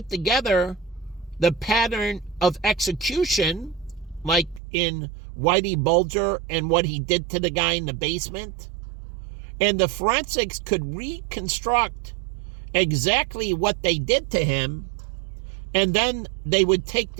together the pattern of execution, like in Whitey Bulger and what he did to the guy in the basement. And the forensics could reconstruct exactly what they did to him, and then they would take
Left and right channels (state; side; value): drops out; left; at 4.6 s